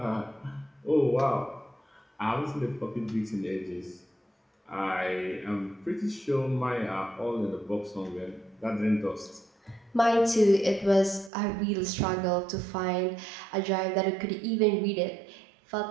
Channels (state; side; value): drops out; left; at 11.3 s